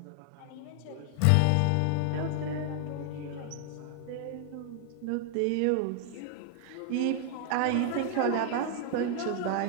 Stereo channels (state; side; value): different; both; correlation 0.00